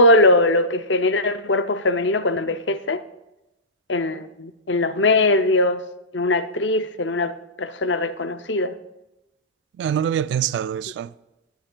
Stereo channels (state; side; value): normal; both; correlation -0.20